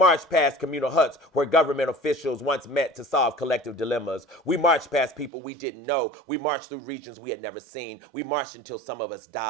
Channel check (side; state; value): left; drops out; at 5.3 s